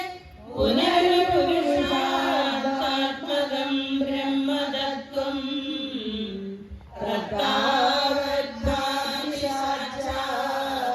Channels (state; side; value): identical; both; correlation 1.00